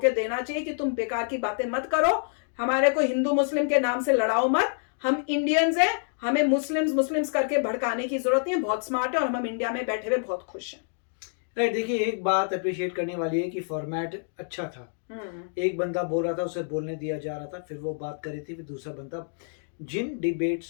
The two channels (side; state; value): right; silent; digital silence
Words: देना चाहिए कि तुम बेकार की बातें मत करो, हमारे को हिंदू मुस्लिम के नाम से लड़ाओ मत, हम इंडियंस हैं, हमें मुस्लिम्स करके भड़काने की जरूरत नहीं है, बहुत स्मार्ट है और हम इंडिया में बैठे हुए बहुत खुश हैं। राइट, देखिए एक बात अप्रिशिएट करने वाली है कि फॉर्मेट अच्छा था। एक बंदा बोल रहा था, उसे बोलने दिया जा रहा था, फिर वो बात कर रही थी, फिर दूसरा बंदा, जिन